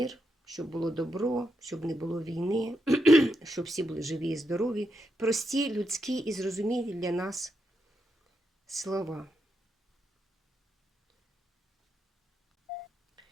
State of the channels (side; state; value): both; normal; correlation 0.84